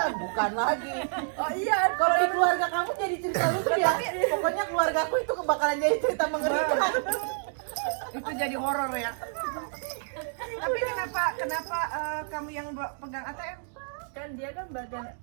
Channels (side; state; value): left; silent; digital silence